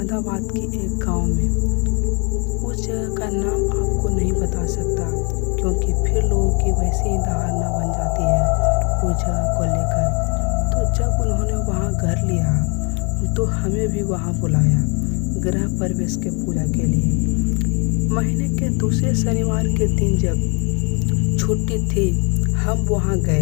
की एक गांव में। उस जगह का नाम आपको नहीं बता सकता, क्योंकि फिर लोगों की वैसी ही धारणा बन जाती है उस जगह को लेकर। तो जब उन्होंने वहां घर लिया तो हमें भी वहां बुलाया गृह प्रवेश के पूजा के लिए। महीने के दूसरे शनिवार के दिन जब छुट्टी थी, हम वहां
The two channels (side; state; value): right; quieter; 33.4 dB